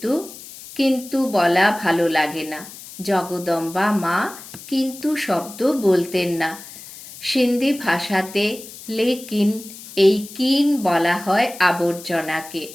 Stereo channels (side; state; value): left; noise; hiss, 16 dB below the sound